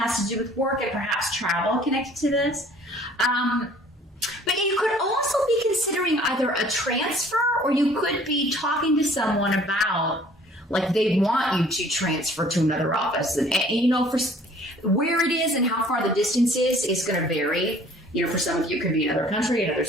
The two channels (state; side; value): normal; both; correlation 0.54